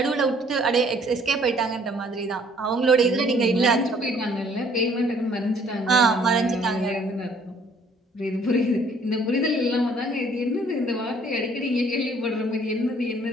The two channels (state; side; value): normal; both; correlation 0.60